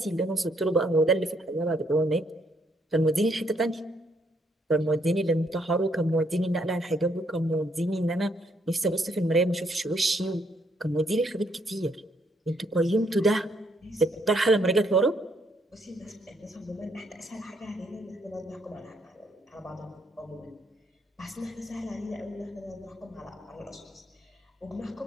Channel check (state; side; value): normal; both; correlation 0.72